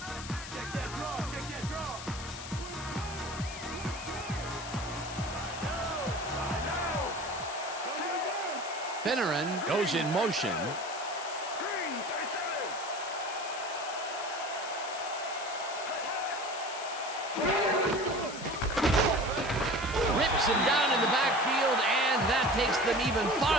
Finneran goes in motion. Rips him down in the backfield, and that takes them even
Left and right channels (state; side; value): noise; left; hiss, 11 dB below the sound